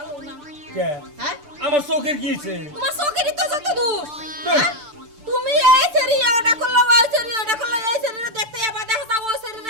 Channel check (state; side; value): late; left; 6.8 ms